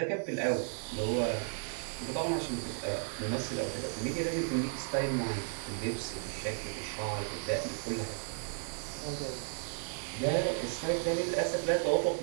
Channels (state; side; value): silent; left; 55 dB below the other